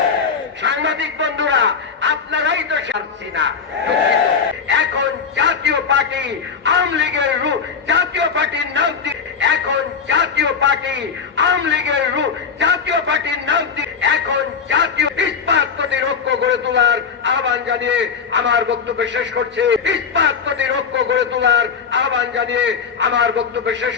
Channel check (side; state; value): right; quieter; 6.2 dB